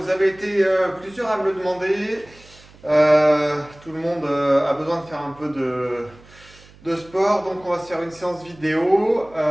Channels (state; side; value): noise; right; hum, 24 dB below the sound